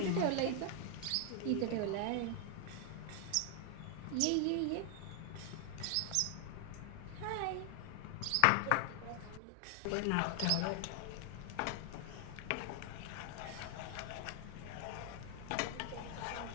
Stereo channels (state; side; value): different; both; correlation 0.00